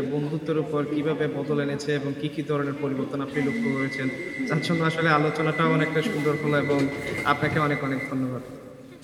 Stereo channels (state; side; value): identical; both; correlation 1.00